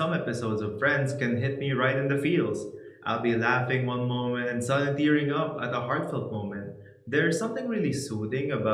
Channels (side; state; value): both; identical; correlation 1.00